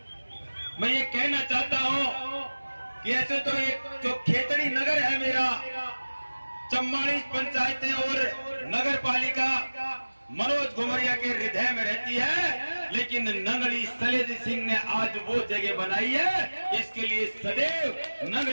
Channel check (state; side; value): inverted; both; correlation -1.00